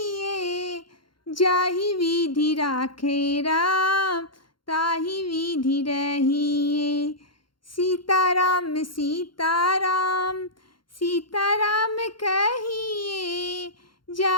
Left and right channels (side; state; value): right; late; 0.72 ms